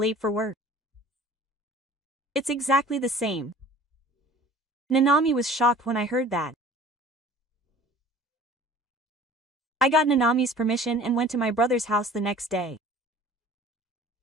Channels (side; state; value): both; normal; correlation 0.46